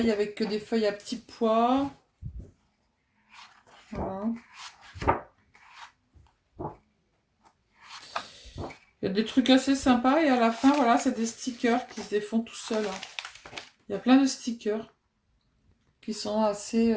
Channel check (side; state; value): both; identical; correlation 1.00